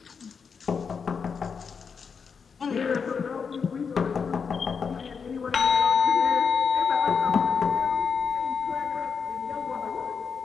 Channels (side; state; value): right; quieter; 5.9 dB